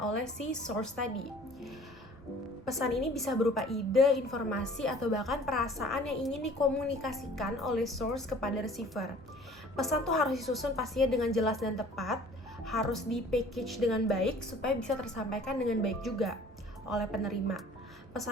si source tadi. Pesan ini bisa berupa ide, informasi, atau bahkan perasaan yang ingin dikomunikasikan oleh source kepada receiver. Pesan tuh harus disusun pastinya dengan jelas dan tepat, harus di-package dengan baik supaya bisa tersampaikan dengan baik juga oleh penerima.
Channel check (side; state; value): both; normal; correlation 0.50